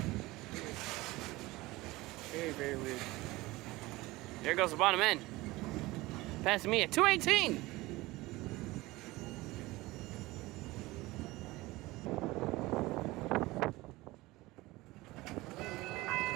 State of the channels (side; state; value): left; quieter; 20.1 dB